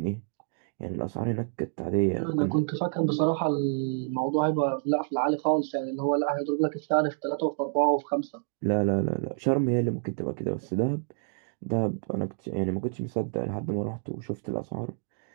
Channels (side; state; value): left; silent; digital silence